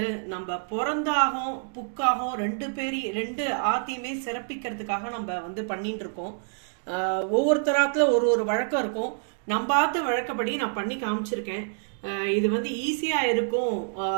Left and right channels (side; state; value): left; silent; digital silence